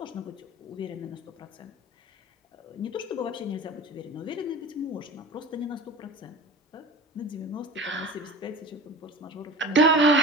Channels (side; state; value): both; normal; correlation 0.34